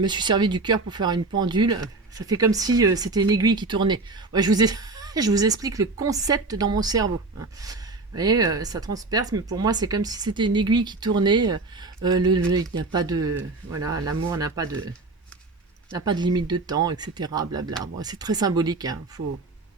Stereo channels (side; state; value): left; quieter; 3.5 dB